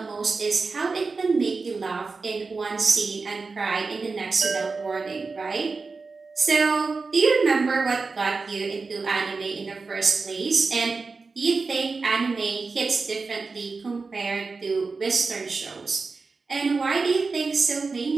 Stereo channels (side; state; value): left; quieter; 4.2 dB